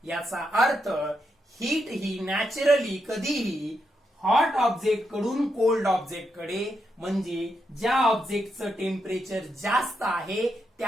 याचा अर्थ हीट ही नॅचरली कधीही हॉट ऑब्जेक्ट कडून कोल्ड ऑब्जेक्ट कडे, म्हणजे ज्या ऑब्जेक्टचं टेम्परेचर जास्त आहे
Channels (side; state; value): both; normal; correlation 0.82